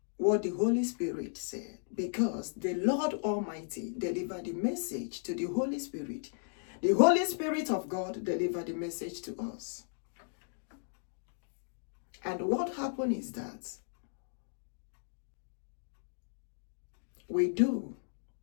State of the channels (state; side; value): silent; right; digital silence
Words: what the Holy Spirit said, because the Lord Almighty delivered the message to the Holy Spirit. The Holy Spirit of God delivered the message to us. And what happened is that we do